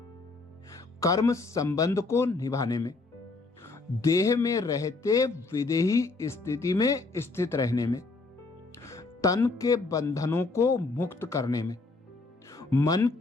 कर्म संबंध को निभाने में, देह में रहते विदेही स्थिति में स्थित रहने में, तन के बंधनों को मुक्त करने में, मन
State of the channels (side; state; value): right; quieter; 3.6 dB